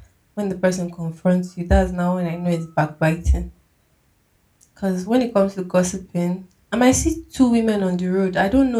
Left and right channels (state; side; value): identical; both; correlation 1.00